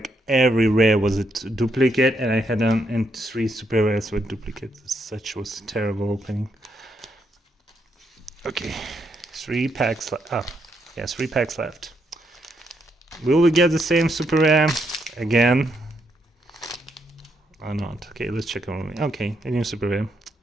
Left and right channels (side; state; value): both; normal; correlation 0.78